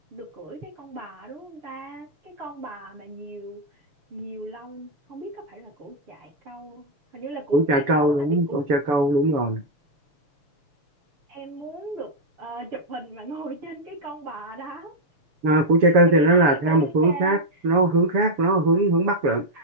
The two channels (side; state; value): left; late; 6.9 ms